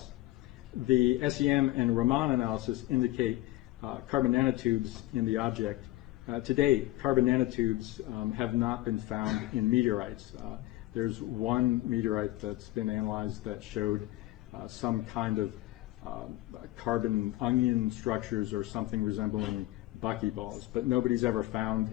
The SEM and Raman analysis indicate carbon nanotubes in the object. To date, carbon nanotubes have not been found in meteorites. There's one meteorite that's been analyzed that showed some kind of carbon onion structures or something resembling buckyballs, but nobody's ever found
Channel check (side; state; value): right; quieter; 17.1 dB